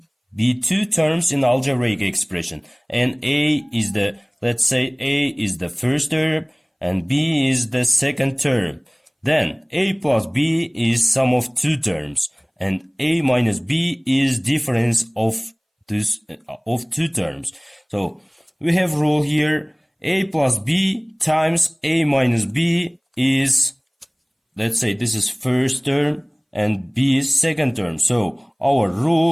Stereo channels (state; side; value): identical; both; correlation 1.00